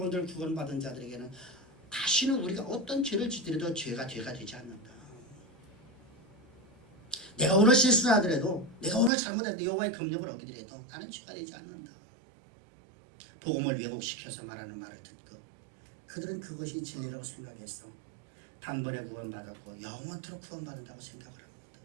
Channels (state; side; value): drops out; left; at 9.1 s